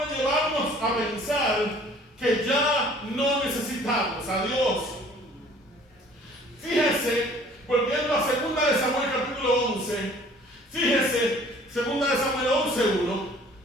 llevarnos a pensar que ya no necesitamos a Dios. Fíjese, volviendo a 2 de Samuel capítulo 11, fíjese, 2 de Samuel 11:1,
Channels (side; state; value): both; normal; correlation 0.53